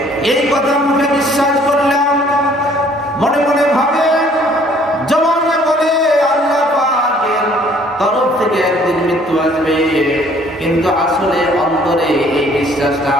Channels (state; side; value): normal; both; correlation 0.59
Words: এই কথা মুখে বিশ্বাস করলাম, মনে মনে ভাবে, জবানে বলে আল্লাহ পাকের তরফ থেকে একদিন মৃত্যু আসবে, কিন্তু আসলে অন্তরে এই বিশ্বাসটা